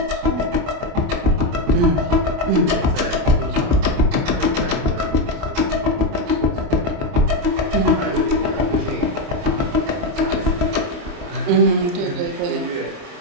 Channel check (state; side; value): late; left; 28 ms